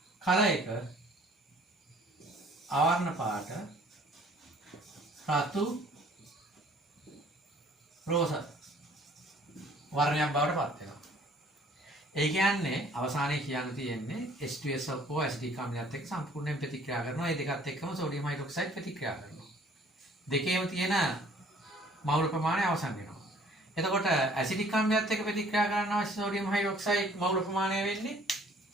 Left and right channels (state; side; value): normal; both; correlation 0.56